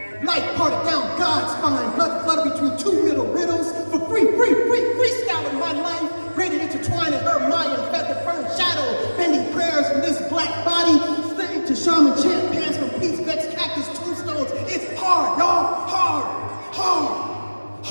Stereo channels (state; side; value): inverted; both; correlation -1.00